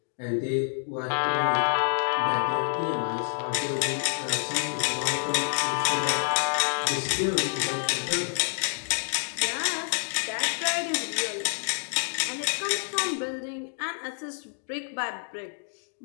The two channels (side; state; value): right; silent; 59 dB below the other